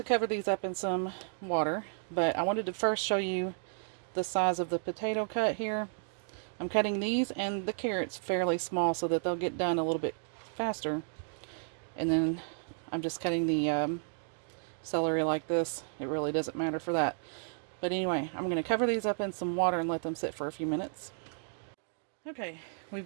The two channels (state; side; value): silent; left; digital silence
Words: cover these up in some water, but I wanted to first show you the size of the potato cut here. I'm cutting these and the carrots fairly small so that they'll get done a little bit faster. And then I'm just cutting the celery like this. It really doesn't matter for that. But anyway, I'm going to cover these up in some water and let them sit for a few minutes. Okay,